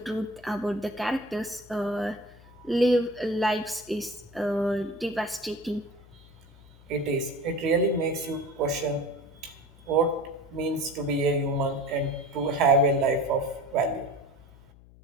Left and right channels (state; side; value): noise; left; hum, 23 dB below the sound